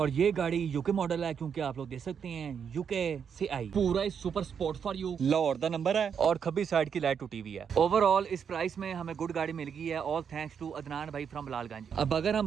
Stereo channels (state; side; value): quieter; left; 7.3 dB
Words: ये गाड़ी यूके मॉडल है, क्योंकि आप लोग देख सकते हैं यूके से आई। पूरा ही super sport for you Lahore दा नंबर है और खब्बी साइड की लाइट टूटी हुई है। ओवरऑल इस प्राइस में हमें गुड गाड़ी मिल गई है, ऑल थैंक्स टू अदनान भाई फ्रॉम बिलालगंज। अब अगर